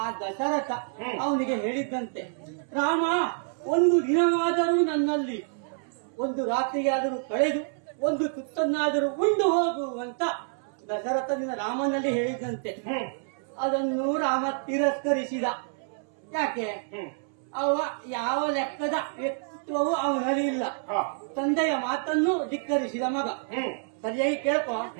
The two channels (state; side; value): silent; left; 59 dB below the other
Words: ದಶರಥ ಅವನಿಗೆ ಹೇಳಿದ್ದಂತೆ, ರಾಮ ಒಂದು ದಿನವಾದರೂ ನನ್ನಲ್ಲಿ ಒಂದು ರಾತ್ರಿಯಾದರೂ ಕಳೆದು ಒಂದು ತುತ್ತನ್ನಾದರೂ ಉಂಡು ಹೋಗುವಂತ ದಶರಥನಿಂದ ರಾಮನಲ್ಲಿ ಹೇಳಿದಂತೆ. ಅದನ್ನು ರಾಮ ತಿರಸ್ಕರಿಸಿದ. ಯಾಕೆ? ಅವ ಯಾವ ಲೆಕ್ಕದ ವ್ಯಕ್ತಿತ್ವವು ಅವನಲ್ಲಿ ಇಲ್ಲ. ತಂದೆಯ ಮಾತನ್ನು ಧಿಕ್ಕರಿಸಿದ ಮಗ. ಸರಿಯಾಗಿ ಕೇಳ್ಕೊ.